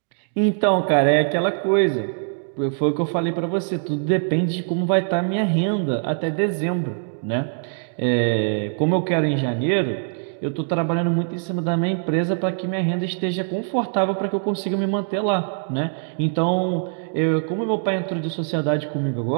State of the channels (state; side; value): silent; left; digital silence